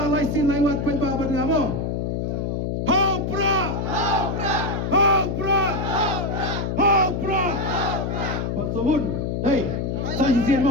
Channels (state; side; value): noise; left; hum, 1 dB below the sound